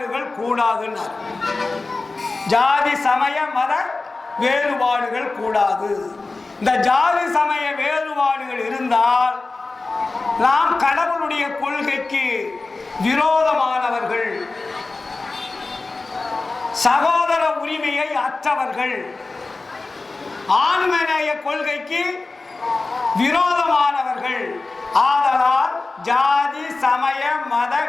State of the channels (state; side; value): quieter; right; 3.6 dB